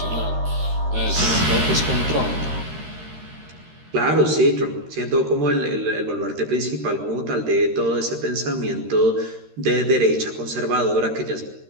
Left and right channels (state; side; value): late; left; 13 ms